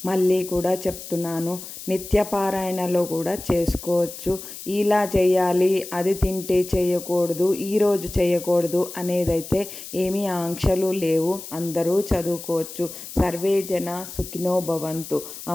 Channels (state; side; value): noise; left; hiss, 12 dB below the sound